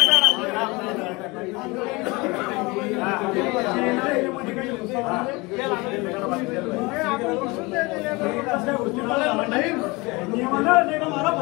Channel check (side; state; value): right; quieter; 24.8 dB